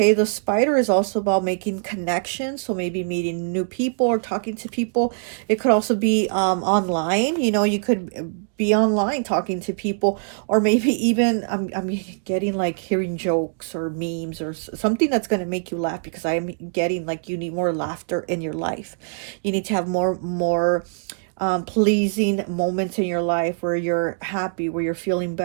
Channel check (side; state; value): left; silent; digital silence